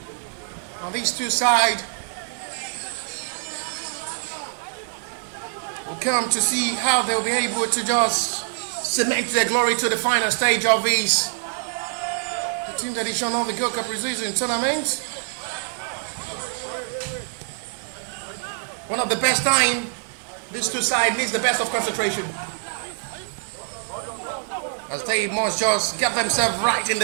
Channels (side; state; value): left; silent; digital silence